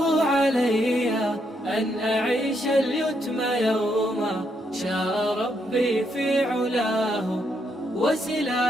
علي أن أعيش اليتم يوما، شاء ربي في علاه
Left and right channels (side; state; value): both; normal; correlation 0.77